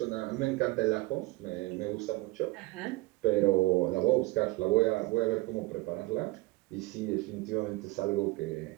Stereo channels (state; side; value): quieter; left; 21.3 dB